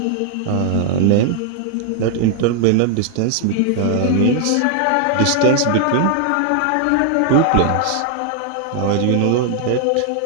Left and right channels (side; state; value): both; different; correlation 0.00